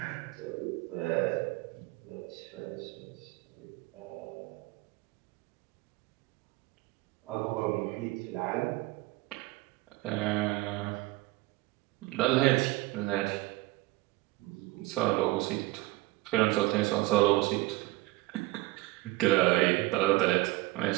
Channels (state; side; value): quieter; left; 20.1 dB